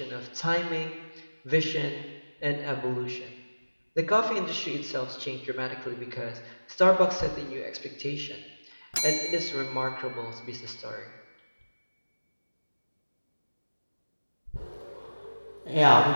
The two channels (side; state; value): both; inverted; correlation -1.00